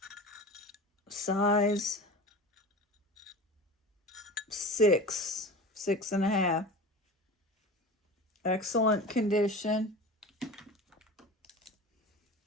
Size 6, 6.5. Excellent condition.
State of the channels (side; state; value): both; normal; correlation 0.33